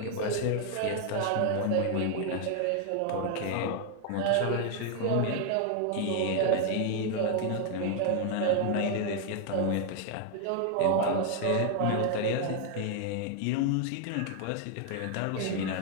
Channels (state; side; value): different; both; correlation 0.00